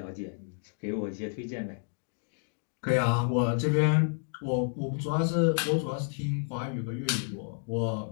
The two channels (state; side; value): silent; right; 58 dB below the other